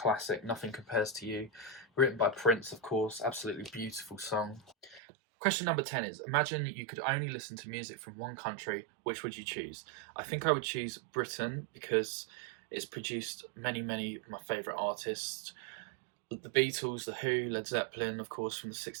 Nothing Compares to You, written by Prince, of course. Absolutely beautiful song. Question number 10 is, imagine you could only listen to music from one country. Which would you choose? I think I would choose Britain because it's produced many of my favourite artists. The Beatles, The Who, Led Zeppelin, of course, from the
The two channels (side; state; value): left; drops out; at 5.0 s